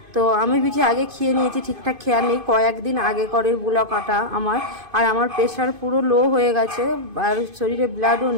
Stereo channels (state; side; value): late; left; 2.5 ms